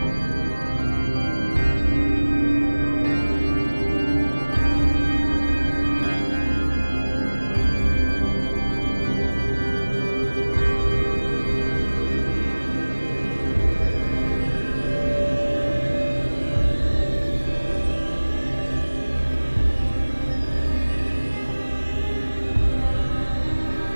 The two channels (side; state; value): both; inverted; correlation -1.00